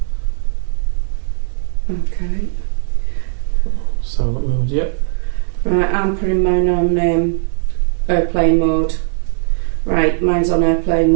Okay. Silent mode, yep. Right, I'm putting mine on airplane mode. Right, mine's on airplane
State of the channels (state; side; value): silent; left; 68 dB below the other